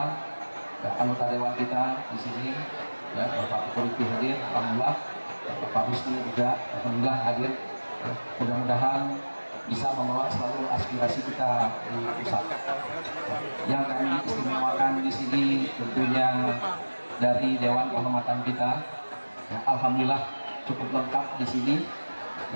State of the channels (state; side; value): inverted; both; correlation -1.00